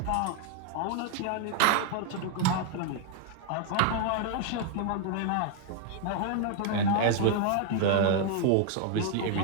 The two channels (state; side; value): different; both; correlation 0.00